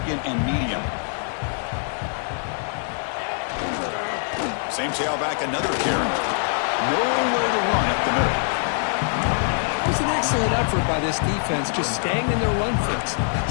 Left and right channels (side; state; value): right; silent; digital silence